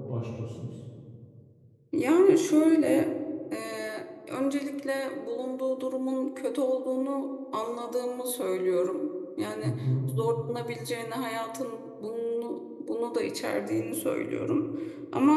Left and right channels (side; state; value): both; identical; correlation 1.00